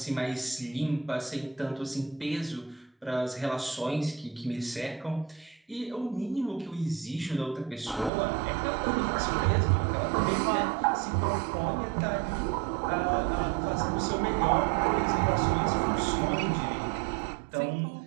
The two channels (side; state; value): left; drops out; at 8.1 s